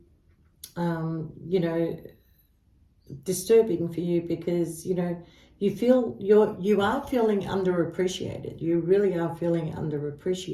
you know, disturbing for you, because, you know, you are feeling underappreciated. You really are feeling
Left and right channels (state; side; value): identical; both; correlation 1.00